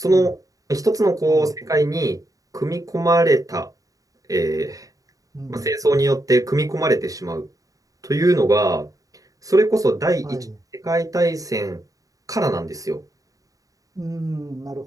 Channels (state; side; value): late; left; 0.17 ms